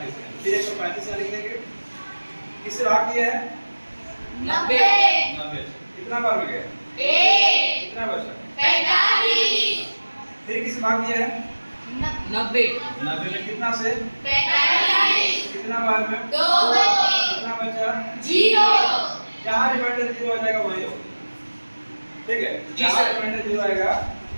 में, फिर 135 से लिख देंगे। किससे भाग दिया है 90। 90। कितना बार में गया कितना बचा 45। फिर किससे भाग दिया है 90 90 में, कितना से 45। कितना बार में 2। कितना बचा 0। जहाँ रिमाइंडर 0 आ जाएगा वही हो। ठीक है, जी जहाँ सर। रिमाइंडर 0 आएगा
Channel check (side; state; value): both; inverted; correlation -1.00